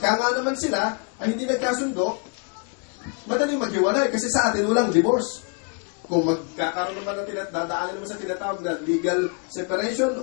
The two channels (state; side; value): quieter; right; 33.6 dB